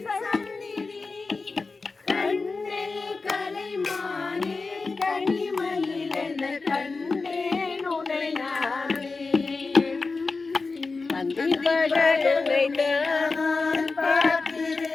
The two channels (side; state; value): right; quieter; 4.0 dB